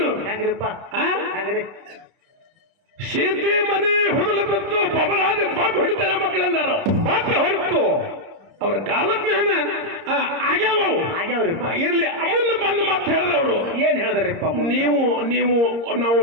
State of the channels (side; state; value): left; late; 30 ms